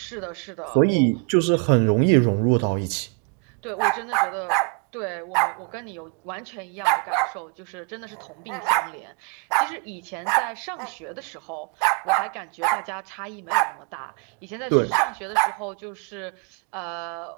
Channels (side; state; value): left; quieter; 34.6 dB